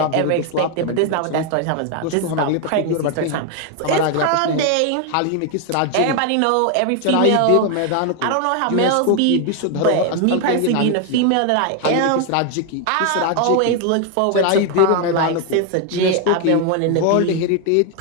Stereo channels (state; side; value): different; both; correlation 0.01